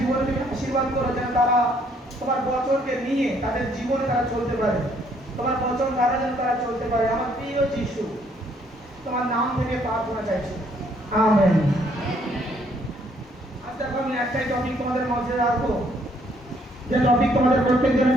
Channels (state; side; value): normal; both; correlation 0.67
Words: তুমি আশীর্বাদ করো, যেন তারা তোমার বচনকে নিয়ে তাদের জীবনে তারা চলতে পারে, তোমার বচন দ্বারা যেন তারা চলতে পারে। আমার প্রিয় যিশু, তোমার নাম থেকে প্রার্থনা চাইছি, আমেন। আজ দেখো আমি একটাই টপিক তোমাদের মধ্যে রাখবো, যে টপিক তোমাদের প্রত্যেকজনের